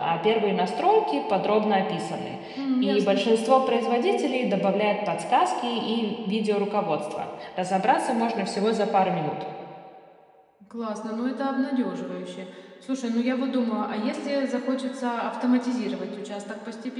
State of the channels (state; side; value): identical; both; correlation 1.00